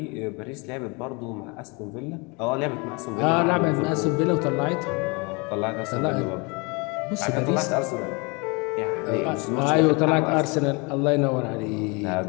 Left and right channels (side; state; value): right; quieter; 29.6 dB